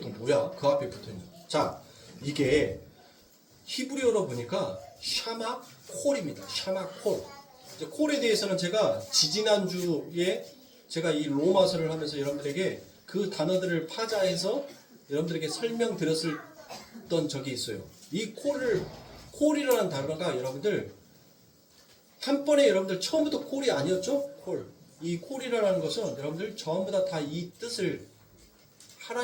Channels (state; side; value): identical; both; correlation 1.00